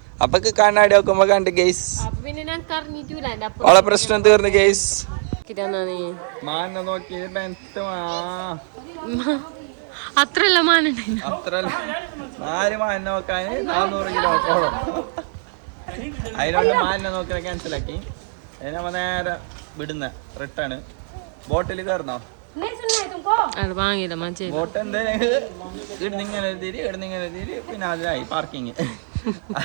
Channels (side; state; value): left; silent; 64 dB below the other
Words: അപ്പൊ കണ്ണാടി നോക്കുമ്പോ കണ്ട് ഗെയ്സ് അവളെ പ്രശ്നം തീർന്നു ഗെയ്സ്. മാനെ നോക്കി അത്രല്ല മാന അത്രല്ല 4 മാനെ നോക്കാൻ 400 കിലോമീറ്ററോളം. അതിനോണ്ട് മാനിനെ നോക്കിയാൽ ക്യാൻസലാക്കി. നമ്മ നേരെ വിടുന്ന റിട്ടേൺ. ബോട്ടിൽ കയറുന്നോ? അത് വാങ്ങിയില്ല മനസ്സിലായി. ബോട്ട് ഇടുന്നിങ്ങനെ തിരി പിന്നെ അതിനായി പാർക്കിങ്.